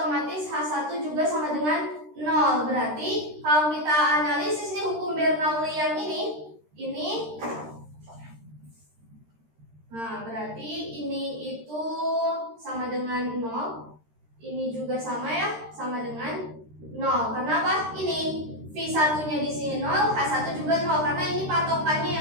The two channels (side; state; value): left; late; 13 ms